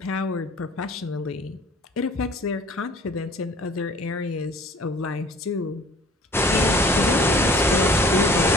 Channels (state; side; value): normal; both; correlation 0.51